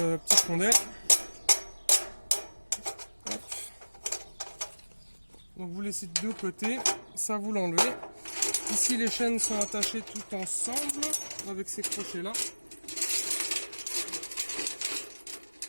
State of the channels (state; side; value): inverted; both; correlation -1.00